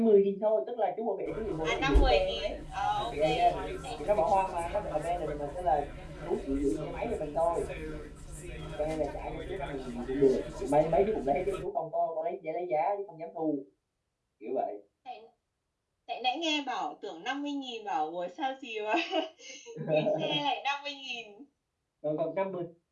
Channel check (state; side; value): identical; both; correlation 1.00